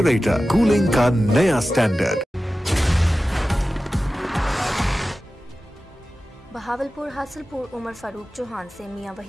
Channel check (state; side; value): normal; both; correlation 0.95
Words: cooling का नया standard. Bahawalpur Hasilpur Umar Farooq Chauhan से मियां